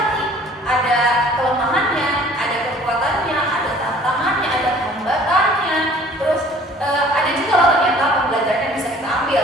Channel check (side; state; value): both; normal; correlation 0.52